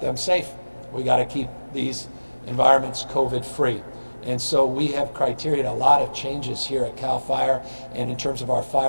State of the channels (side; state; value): both; inverted; correlation -1.00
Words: safe. We got to keep these environments COVID-free. And so we have criteria, a lot of changes here at CALFIRE and in terms of our